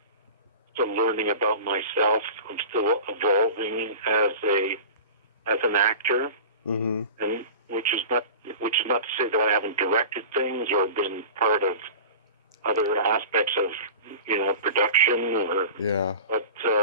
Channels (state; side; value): inverted; both; correlation -0.35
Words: still learning about myself. I'm still evolving as an actor, mm-hmm. and which is not to say that I haven't directed things or been part of other aspects of production, or yeah. But